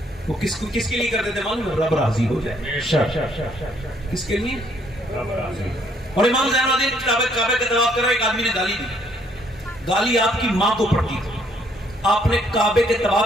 وہ کس کے لیے کرتے تھے معلوم, رب راضی ہو جائے. کس کے لیے, رب راضی. اور امام زین العابدین کعبے کا طواف کر رہے, ایک آدمی نے گالی دی. گالی آپ کی ماں کو پڑتی تھی. آپ نے کعبے کے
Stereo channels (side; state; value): both; normal; correlation 0.67